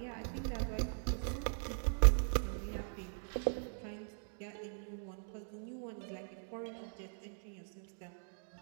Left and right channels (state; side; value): silent; left; digital silence